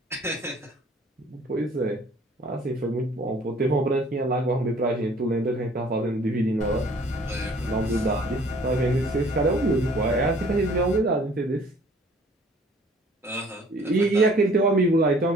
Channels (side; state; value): both; normal; correlation 0.54